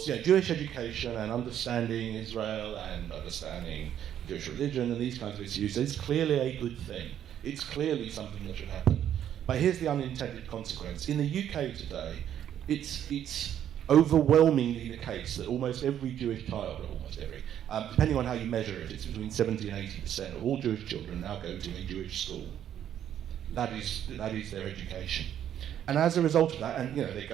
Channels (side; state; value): left; quieter; 10.2 dB